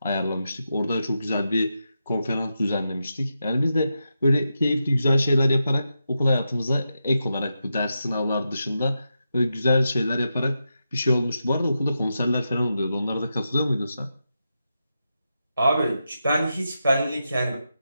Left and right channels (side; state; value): both; inverted; correlation -0.87